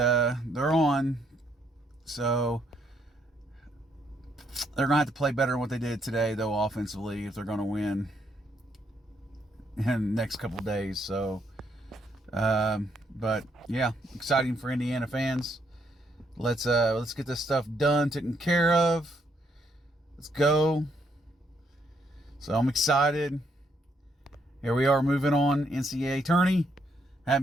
on. So they're gonna have to play better than what they did today, though, offensively, if they're gonna win in the next couple of days. So, but yeah, exciting for Indiana fans. Let's get this stuff done, taken care of. Let's go. So I'm excited. Here we are, moving on. NCAA tourney.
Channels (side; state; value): both; normal; correlation 0.73